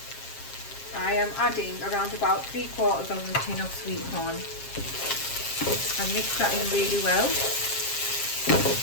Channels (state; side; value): late; right; 7.4 ms